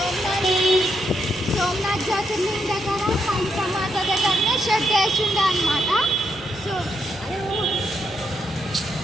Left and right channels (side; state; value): both; normal; correlation 0.79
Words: దగ్గర కాళికామాత దగ్గరనే షెడ్ వేసిండే అనమాట.